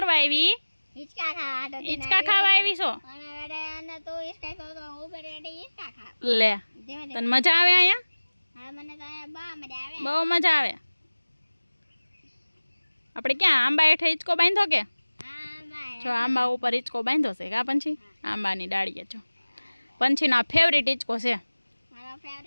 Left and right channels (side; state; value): both; inverted; correlation -1.00